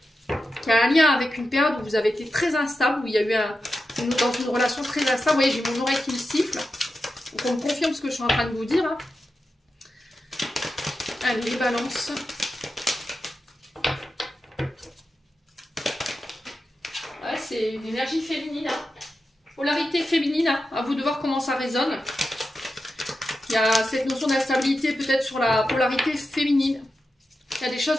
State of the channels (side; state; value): both; normal; correlation 0.90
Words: qui a un lien avec une période où vous avez été très instable, où il y a eu dans une relation très instable. Vous voyez, j'ai mon oreille qui me siffle. Donc, on me confirme ce que je suis en train de vous dire. Hein. Allez, les balances. Ouais, c'est une énergie féminine. Hein. Polarité féminine. Hein. À vous de voir comment ça résonne. Il y a cette notion d'instabilité peut-être sur la polarité féminine. Il y a des choses